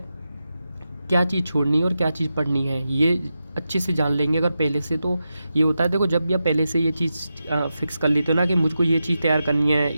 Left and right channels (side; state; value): both; inverted; correlation -0.90